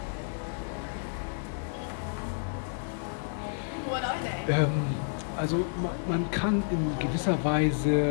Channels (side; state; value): right; silent; digital silence